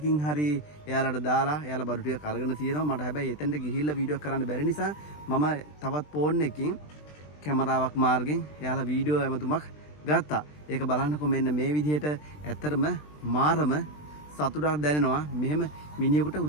හරි එයාලට දාලා එයාලා බඩු ටික අරගෙන තියෙනවා. මට හැබැයි එතෙන්ට ගිහිල්ලා වීඩියෝ කරන්න බැරි නිසා මම තවත් ෆෝන් එකකින් කැමරාවක් මාර්ගෙන් එයාලා වීඩියෝ ඇමතුමක් ගත්තා. ඒක බලන්නකො මෙන්න මේ විදිහට ඇත්තටම මාරම සතුටක් දැනෙනවා මෙහෙම මිනිහෙකුට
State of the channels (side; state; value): right; late; 20 ms